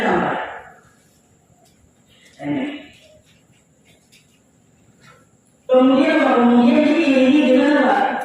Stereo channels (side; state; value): both; identical; correlation 1.00